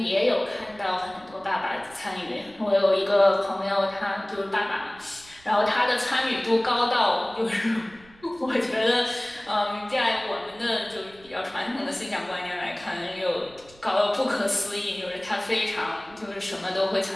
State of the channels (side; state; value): right; noise; rumble, 25 dB below the sound